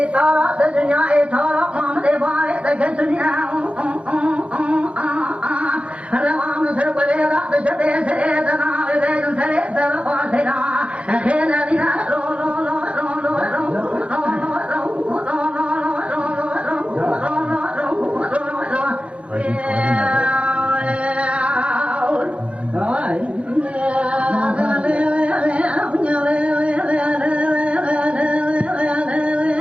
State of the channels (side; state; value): left; late; 0.061 ms